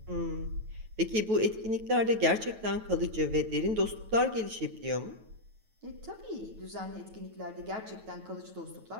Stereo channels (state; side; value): late; left; 9.2 ms